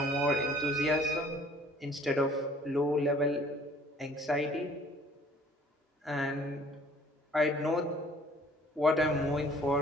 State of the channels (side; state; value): both; normal; correlation 0.55